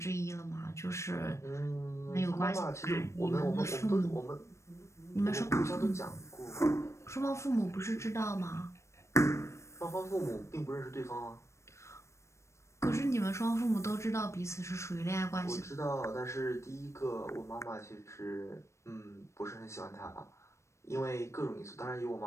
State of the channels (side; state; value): right; late; 0.14 ms